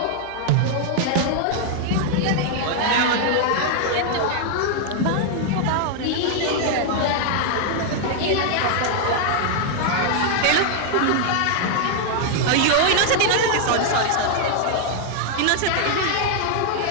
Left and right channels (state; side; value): different; both; correlation 0.00